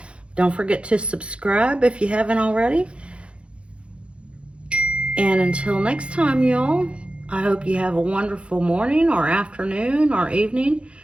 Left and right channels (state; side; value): late; left; 0.059 ms